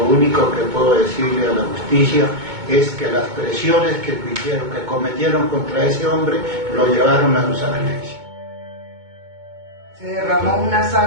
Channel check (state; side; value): late; left; 2.2 ms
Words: único que puedo decirle a la justicia es que las presiones que cometieron contra ese hombre lo llevaron a su sacrificio. Se derrama una